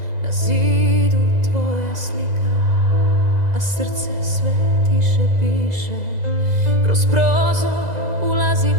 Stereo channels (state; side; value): late; left; 2.0 ms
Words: na zidu tvoja slika, a srce sve tiše piše. Kroz prozor ulazi